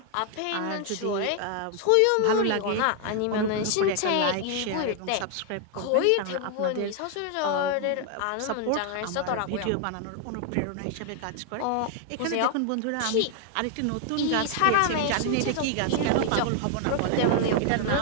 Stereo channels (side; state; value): both; different; correlation 0.00